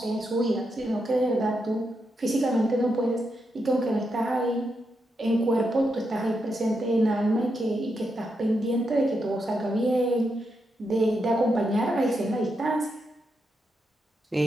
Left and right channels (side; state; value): both; normal; correlation 0.83